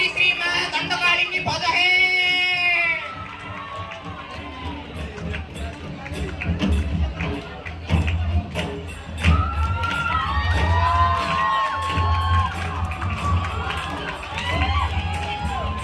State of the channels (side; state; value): both; identical; correlation 1.00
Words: श्री मां दंडकाली की भज है